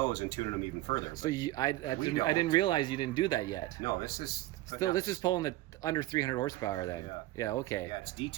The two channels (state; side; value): quieter; left; 16.9 dB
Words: and tuning them even further. So I We didn't don't. realize you didn't do that yet. No, this is Still, this is pulling the under 300 horsepower then. Yeah. Yeah, okay. Yeah, it's